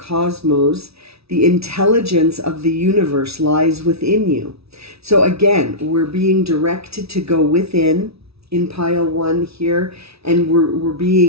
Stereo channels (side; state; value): left; late; 0.77 ms